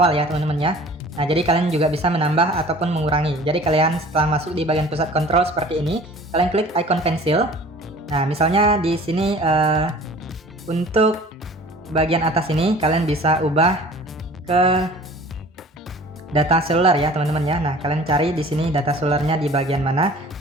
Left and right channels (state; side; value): normal; both; correlation 0.46